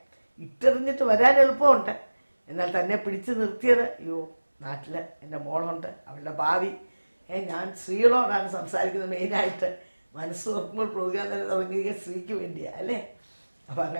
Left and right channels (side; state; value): both; inverted; correlation -1.00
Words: ഇട്ടെറിഞ്ഞിട്ട് വരാൻ എളുപ്പമുണ്ട്, എന്നാൽ തന്നെ പിടിച്ചു നിർത്തിയത്, അയ്യോ നാട്ടിൽ എൻ്റെ മോളുണ്ട്, അവളുടെ ഭാവി. ഞാൻ സ്ത്രീകളോടാണ് സംസാരിക്കുന്നത് മെയിനായിട്ട്. മനസ്സ് തുറക്കുമ്പോൾ പ്രോഗ്രാം തന്നെ തുടങ്ങിയ സ്ത്രീക്ക് വേണ്ടിയാണ് അല്ലേ? അപ്പം